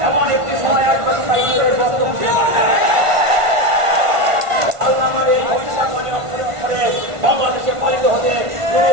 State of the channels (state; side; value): late; left; 1.5 ms